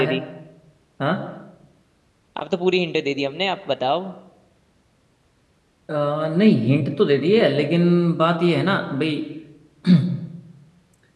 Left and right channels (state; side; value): identical; both; correlation 1.00